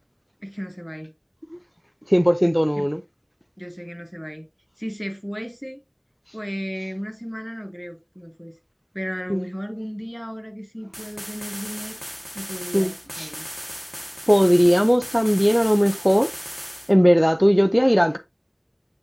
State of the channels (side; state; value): both; identical; correlation 1.00